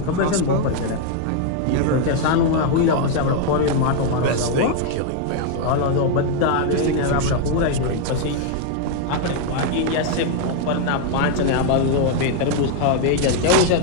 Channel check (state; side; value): different; both; correlation 0.00